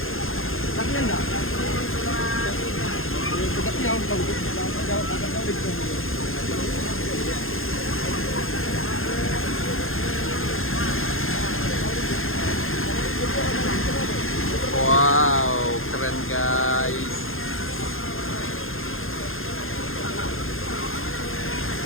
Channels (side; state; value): right; late; 0.60 ms